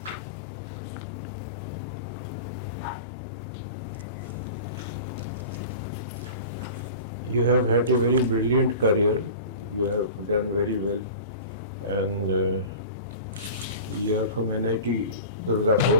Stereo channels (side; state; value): both; inverted; correlation -0.36